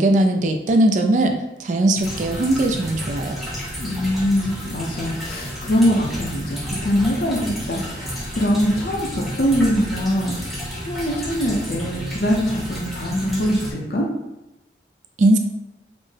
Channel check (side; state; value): both; normal; correlation 0.72